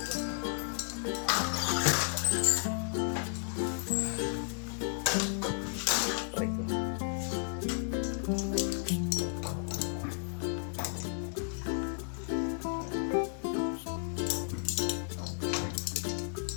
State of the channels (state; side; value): silent; right; 56 dB below the other